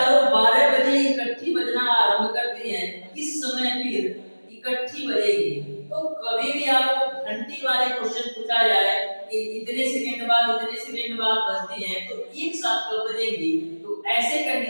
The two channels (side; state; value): both; inverted; correlation -1.00